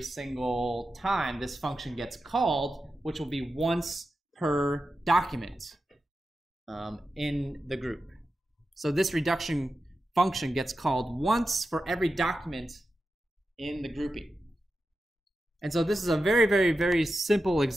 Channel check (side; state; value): both; normal; correlation 0.91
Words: single time this function gets called, which will be once per document in the group. So this reduction function gets called once for every document in the grouping. And so this is a very, very, very simple